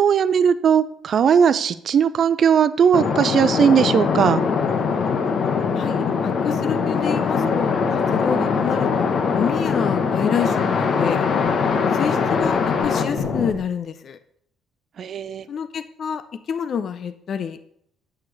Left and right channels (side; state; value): both; normal; correlation 0.68